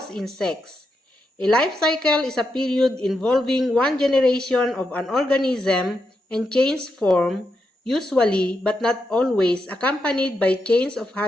insects. A life cycle is a period involving one generation of an organism and change form, usually but not always accompanied by change of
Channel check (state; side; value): normal; both; correlation 0.84